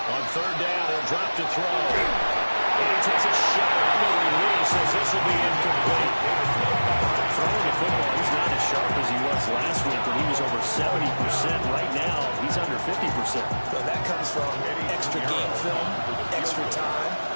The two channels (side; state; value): both; inverted; correlation -1.00